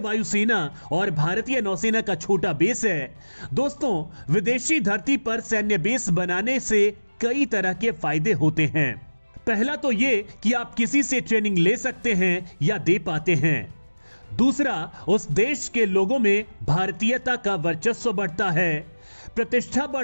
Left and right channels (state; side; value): inverted; both; correlation -1.00